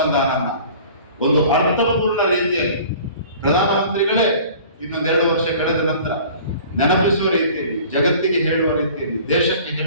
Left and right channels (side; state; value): both; inverted; correlation -0.46